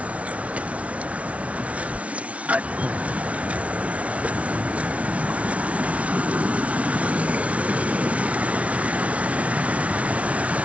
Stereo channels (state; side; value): late; left; 0.064 ms